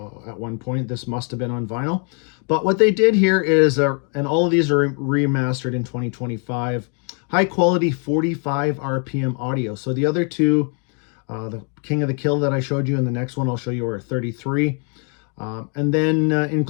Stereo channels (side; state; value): right; quieter; 39.1 dB